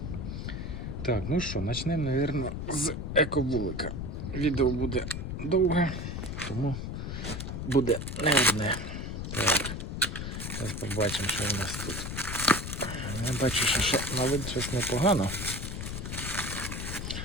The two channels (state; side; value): noise; left; rumble, 5 dB below the sound